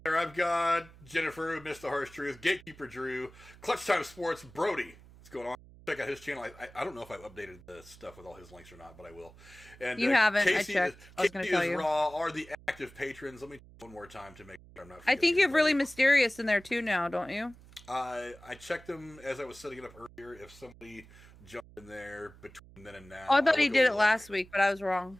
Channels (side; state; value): right; noise; hum, 22 dB below the sound